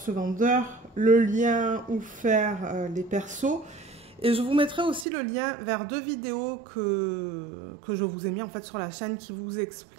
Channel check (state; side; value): drops out; left; at 5.1 s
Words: vendeur, le lien où faire les persos. Et je vous mettrai aussi le lien vers deux vidéos que je vous ai mis en fait sur la chaîne qui vous